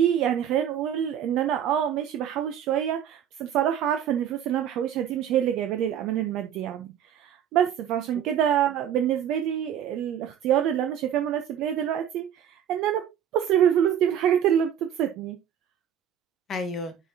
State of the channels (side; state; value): left; quieter; 9.4 dB